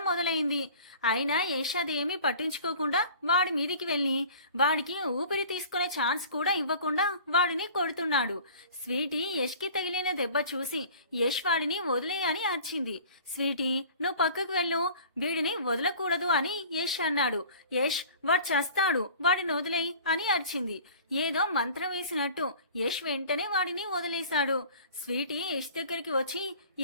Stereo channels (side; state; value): both; inverted; correlation -0.45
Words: మొదలైంది. అయినా యష్ అదేమీ పట్టించుకోకుండా వాడి మీదికి వెళ్లి వాడికి ఊపిరి తీసుకునే ఛాన్స్ కూడా ఇవ్వకుండా వాడిని కొడుతున్నాడు. స్వీటీ యష్ కి తగిలిన దెబ్బ చూసి యష్ వాడిని వదిలేయని అరిచింది. స్వీటీ, నువ్వు పక్కకు వెళ్ళు, వీడిని వదలకూడదు అని యష్ అన్నాడు. యష్, వాడు చస్తాడు, వాడిని వదిలేయి అని అరిచింది. ఏదో మంత్రం వేసినట్టు యష్ వెంటనే వాడిని వదిలేశాడు. స్వీటీ యష్ దగ్గరికి వచ్చి,